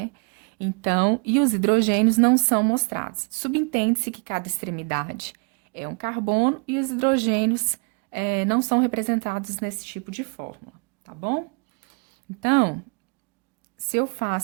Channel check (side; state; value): left; quieter; 36.3 dB